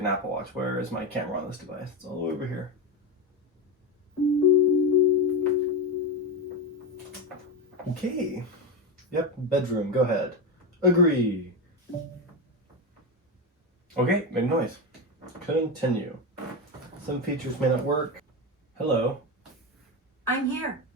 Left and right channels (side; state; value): both; normal; correlation 0.15